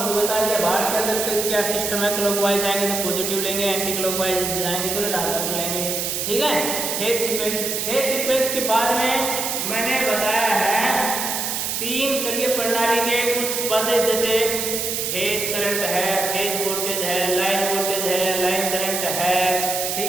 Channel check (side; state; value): right; noise; hiss, 1 dB below the sound